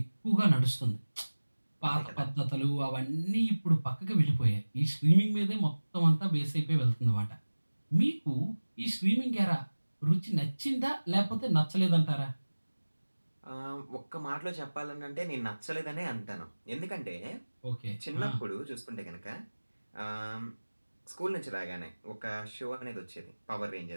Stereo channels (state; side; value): inverted; both; correlation -1.00